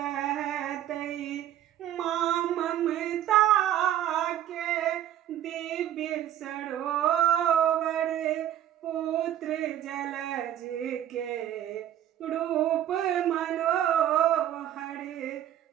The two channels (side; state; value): left; quieter; 11.6 dB